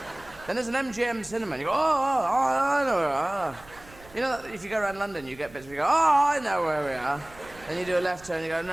Then there's an MGM cinema, and you go, I know where we are. You know, if you go around London, you get bits where you go, oh, I know where we are. Then you do a left turn, and you go,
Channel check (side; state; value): right; noise; rumble, 22 dB below the sound